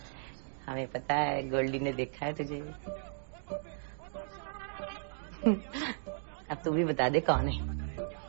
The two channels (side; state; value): left; silent; digital silence